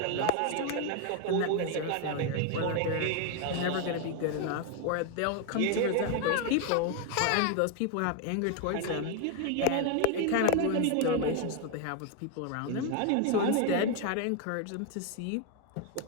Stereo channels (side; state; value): both; different; correlation 0.01